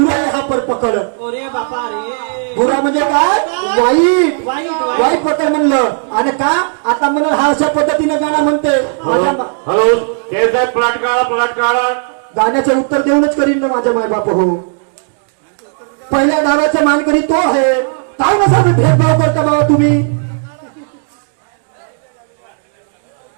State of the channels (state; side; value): silent; left; 67 dB below the other